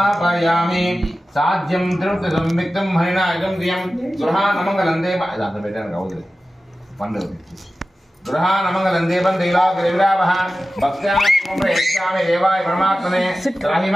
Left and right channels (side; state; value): both; normal; correlation 0.95